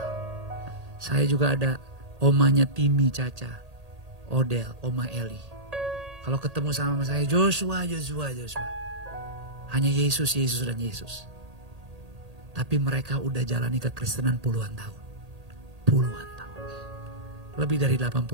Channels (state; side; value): late; left; 1.8 ms